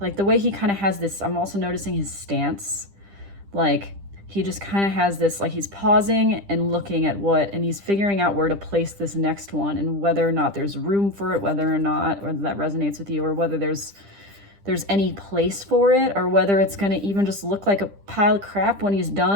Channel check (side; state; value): left; late; 10 ms